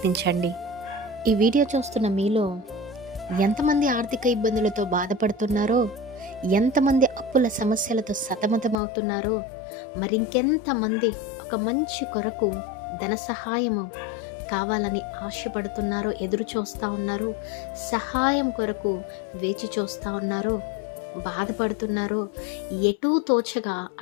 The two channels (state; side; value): drops out; right; at 8.8 s